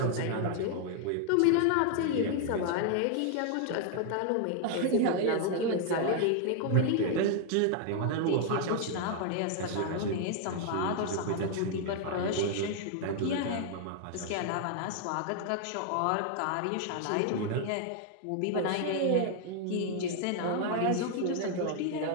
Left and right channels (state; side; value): different; both; correlation 0.00